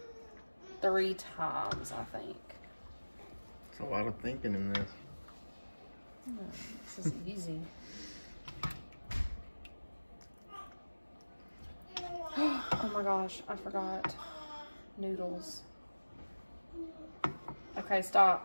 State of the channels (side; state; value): both; inverted; correlation -1.00